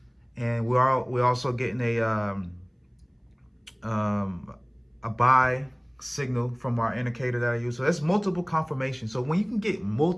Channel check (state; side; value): identical; both; correlation 1.00